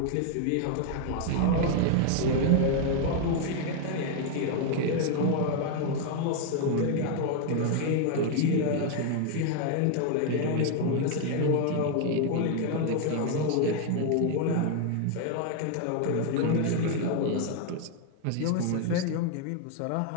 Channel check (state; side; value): different; both; correlation 0.00